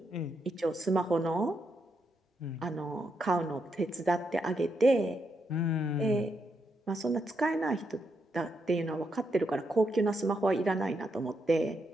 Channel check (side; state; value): both; normal; correlation 0.80